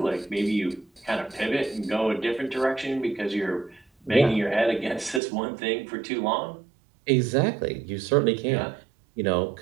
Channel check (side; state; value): left; drops out; at 5.2 s